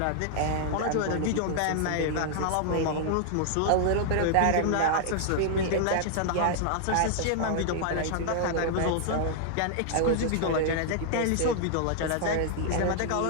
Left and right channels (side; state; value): both; different; correlation -0.01